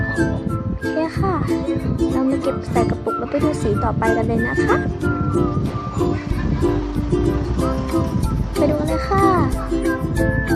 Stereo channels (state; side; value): identical; both; correlation 1.00